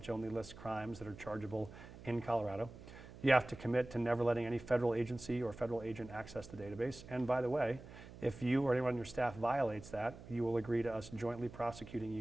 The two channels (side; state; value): right; noise; hum, 16 dB below the sound